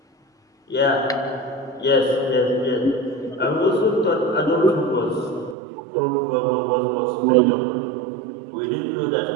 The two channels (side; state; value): left; drops out; at 5.6 s